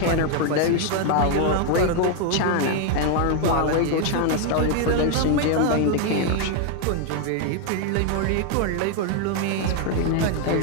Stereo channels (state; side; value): different; both; correlation 0.00